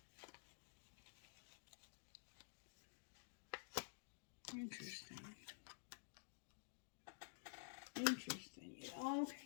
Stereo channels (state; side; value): silent; right; digital silence